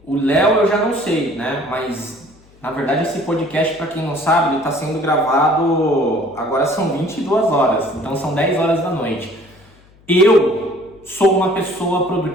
o Léo eu já não sei, né, mas... Na verdade, esse podcast, para quem não sabe, ele está sendo gravado, agora são 22 horas, então são 10 horas da noite. Eu sou uma pessoa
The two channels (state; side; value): noise; left; hum, 28 dB below the sound